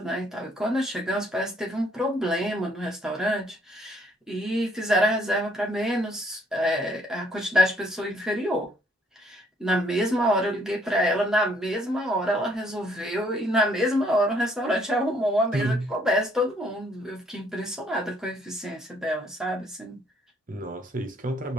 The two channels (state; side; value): normal; both; correlation 0.65